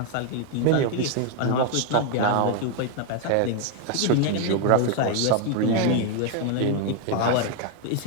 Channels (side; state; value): both; different; correlation 0.00